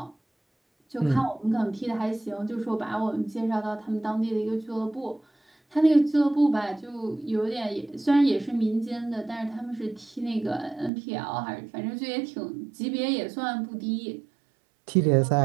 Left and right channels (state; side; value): drops out; left; at 10.9 s